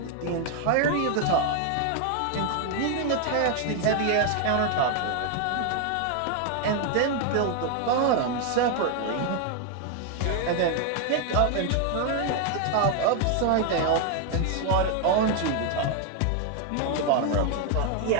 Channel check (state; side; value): different; both; correlation 0.00